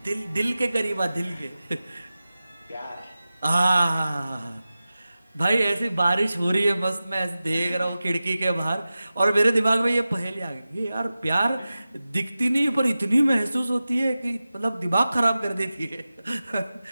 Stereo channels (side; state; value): both; inverted; correlation -0.95